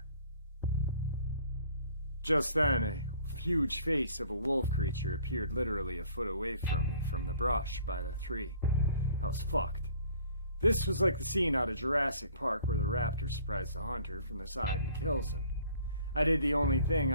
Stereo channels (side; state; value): both; inverted; correlation -0.54